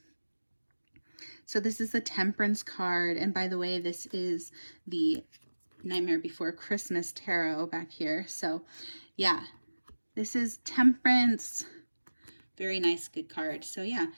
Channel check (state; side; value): inverted; both; correlation -1.00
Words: So this is the Temperance card. And by the way, this is the Nightmare Before Christmas tarot back here. So yeah, this is Temperance. Very nice, good card. So yeah,